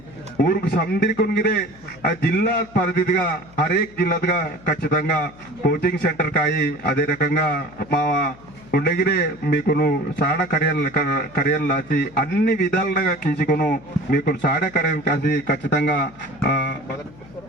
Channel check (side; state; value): left; noise; hum, 23 dB below the sound